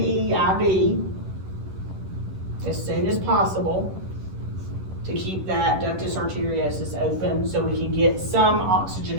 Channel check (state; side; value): late; left; 11 ms